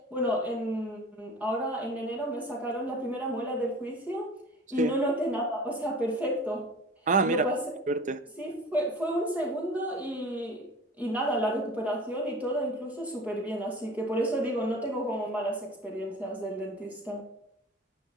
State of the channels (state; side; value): normal; both; correlation 0.40